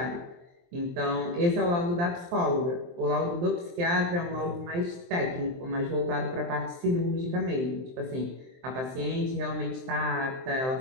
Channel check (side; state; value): left; late; 23 ms